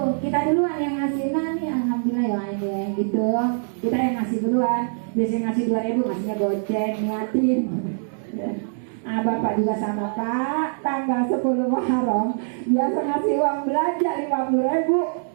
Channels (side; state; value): left; silent; digital silence